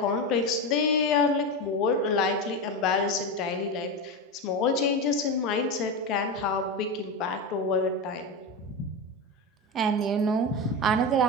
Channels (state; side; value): normal; both; correlation 0.18